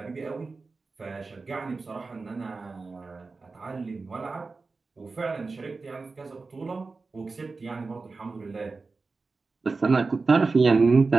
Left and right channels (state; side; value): quieter; left; 4.0 dB